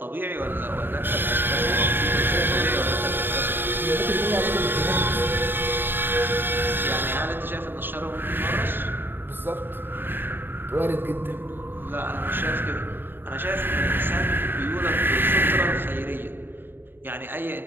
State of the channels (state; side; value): late; left; 0.097 ms